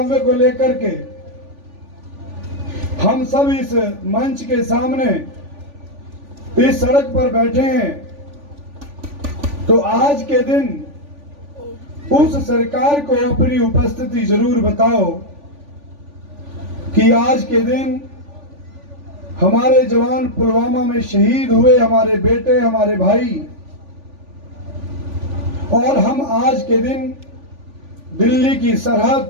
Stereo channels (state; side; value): late; left; 3.4 ms